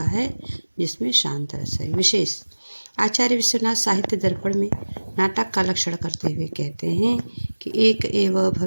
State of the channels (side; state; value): both; inverted; correlation -1.00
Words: है, जिसमें शांत रस है। विशेष आचार्य विश्वनाथ साहित्य दर्पण में नाटक का लक्षण करते हुए कहते हैं कि एक एव